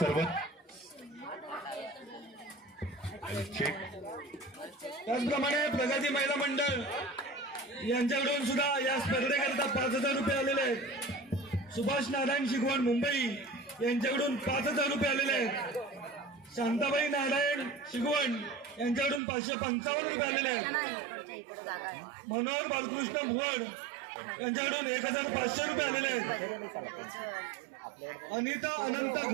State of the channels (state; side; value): drops out; left; at 19.2 s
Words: त्याचप्रमाणे प्रगती महिला मंडळ यांच्याकडून सुद्धा या स्पर्धेकरिता 5,000 रुपये आलेले आहेत. सुभाष नारायण शिकवण मुंबई यांच्याकडून 5,000 रुपये आलेले आहेत. शांताबाई नारायण शिकवण यांच्याकडून 555 रुपये आलेले आहेत. मनोहर बालकृष्ण भुवड यांच्याकडून 1,500 रुपये आलेले आहेत. अनिता अनंत